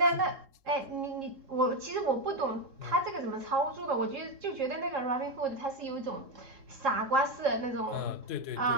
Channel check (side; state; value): left; late; 3.7 ms